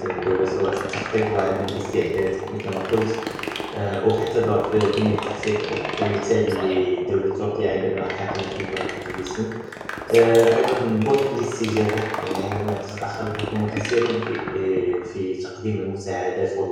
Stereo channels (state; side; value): identical; both; correlation 1.00